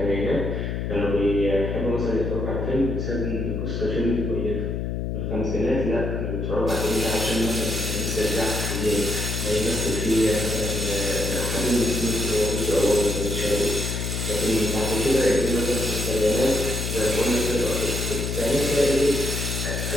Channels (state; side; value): noise; left; hum, 2 dB below the sound